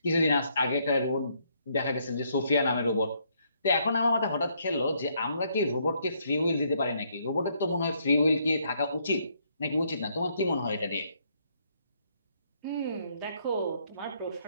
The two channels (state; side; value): inverted; both; correlation -0.71